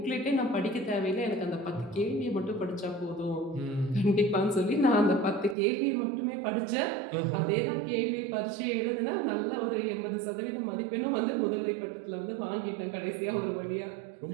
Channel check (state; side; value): drops out; left; at 5.6 s